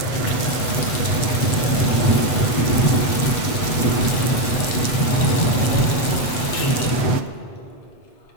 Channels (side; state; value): right; late; 8.1 ms